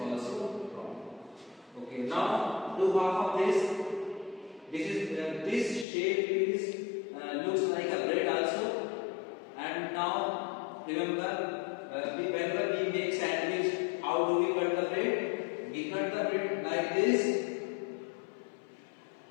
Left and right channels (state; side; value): drops out; right; at 5.9 s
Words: wrong. Okay, now do half of this. This shape is looks like a bread also. And now remember, whenever we make sandwich, how do we cut the bread? We cut the bread like this.